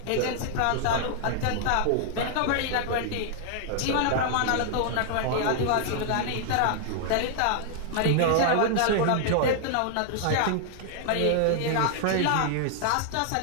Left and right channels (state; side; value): different; both; correlation 0.00